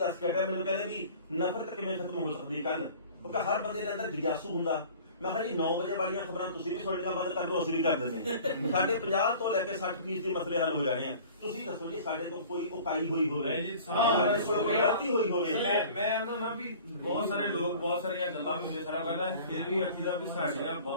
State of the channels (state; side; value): inverted; both; correlation -0.45